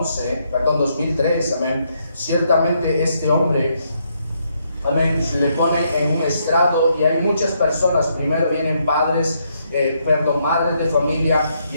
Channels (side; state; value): both; inverted; correlation -0.75